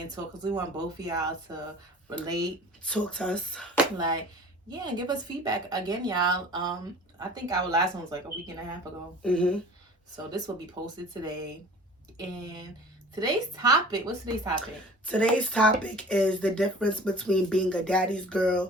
talk because we want both of y'all to relate. Talk to us. Like, yeah, and give us feedback again, y'all. I think our last one was like a week and a half ago. Mm-hmm. So this will be posted today. And today's topic, what's today's topic? Today's topic is the difference between being a daddy's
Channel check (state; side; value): normal; both; correlation 0.45